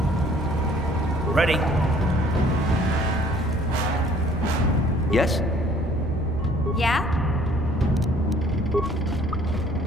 Ready? Yes? Yeah?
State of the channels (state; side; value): normal; both; correlation 0.57